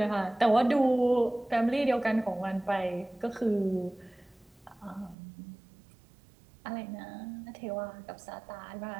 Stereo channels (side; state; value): left; drops out; at 5.2 s